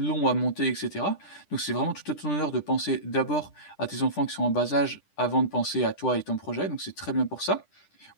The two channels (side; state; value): right; late; 10 ms